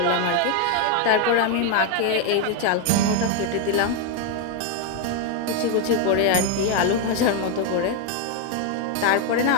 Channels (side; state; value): both; different; correlation 0.01